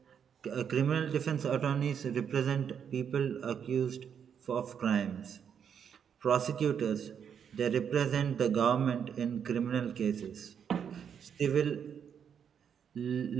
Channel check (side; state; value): left; quieter; 7.8 dB